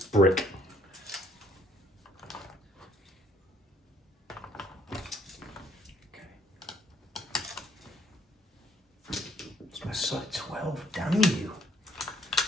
brick. So 12, damn you.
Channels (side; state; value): both; normal; correlation 0.65